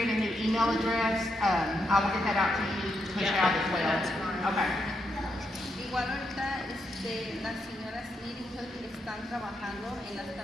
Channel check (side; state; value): both; normal; correlation 0.81